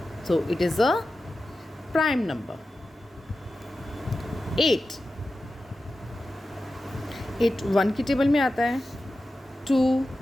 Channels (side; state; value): both; normal; correlation 0.93